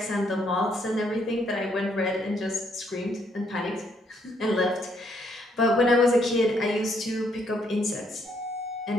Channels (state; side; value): normal; both; correlation 0.71